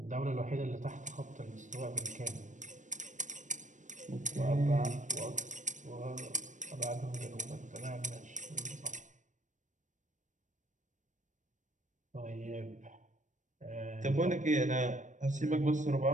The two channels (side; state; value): left; late; 0.36 ms